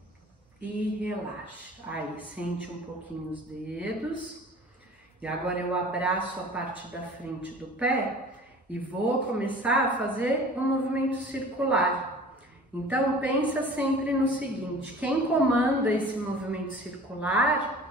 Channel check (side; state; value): both; normal; correlation 0.44